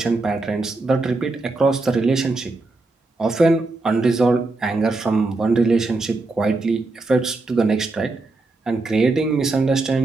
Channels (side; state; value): left; quieter; 3.3 dB